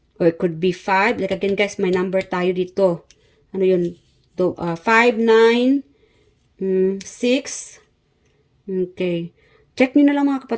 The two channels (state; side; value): identical; both; correlation 1.00